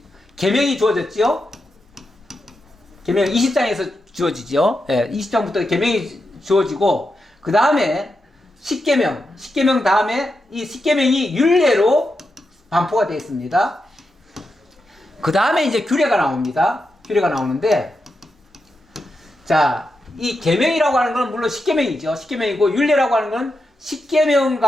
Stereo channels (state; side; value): normal; both; correlation 0.87